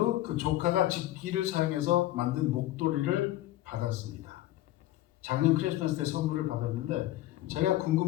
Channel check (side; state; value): right; quieter; 15.4 dB